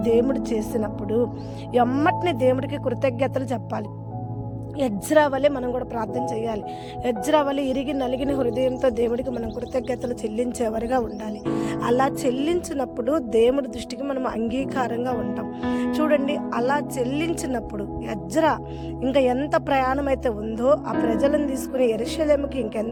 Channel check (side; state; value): both; identical; correlation 1.00